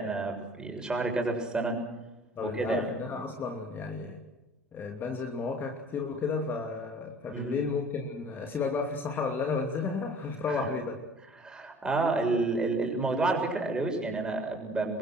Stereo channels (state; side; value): normal; both; correlation 0.49